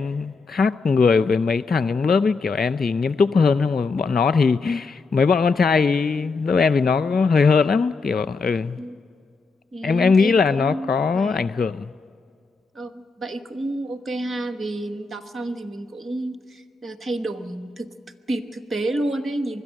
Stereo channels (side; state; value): right; quieter; 4.1 dB